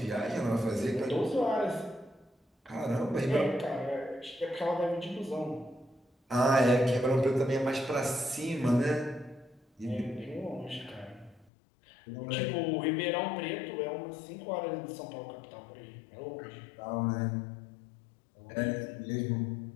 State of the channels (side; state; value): right; drops out; at 11.5 s